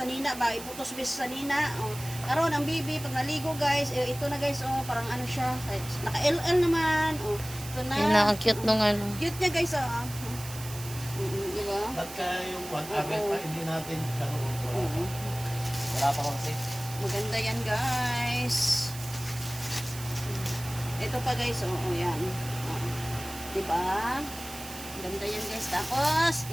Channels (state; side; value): noise; right; hiss, 13 dB below the sound